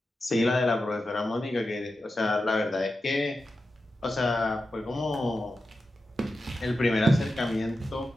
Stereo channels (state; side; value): normal; both; correlation 0.91